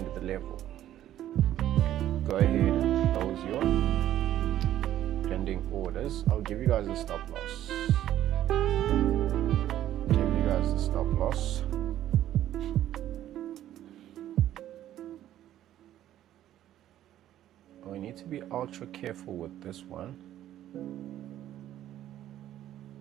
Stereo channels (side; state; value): left; quieter; 12.4 dB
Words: the level. Go ahead and close your pending orders. I'll give you guys a stop loss. Give you guys a stop loss. We need to be ultra careful with this one.